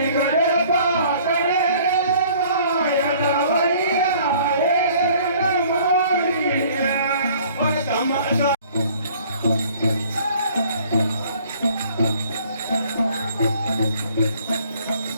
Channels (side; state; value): both; inverted; correlation -0.55